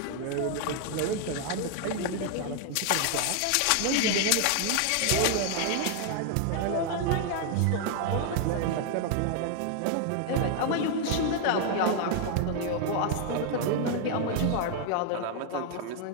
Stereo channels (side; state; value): both; different; correlation 0.00